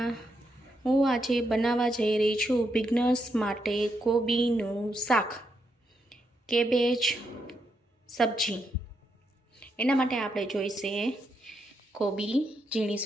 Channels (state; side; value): normal; both; correlation 0.81